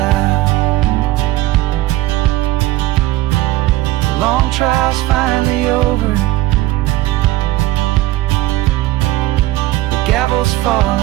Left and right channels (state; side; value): quieter; left; 16.7 dB